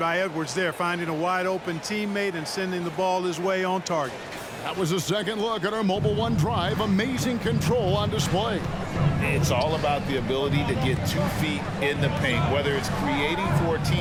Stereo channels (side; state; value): both; identical; correlation 1.00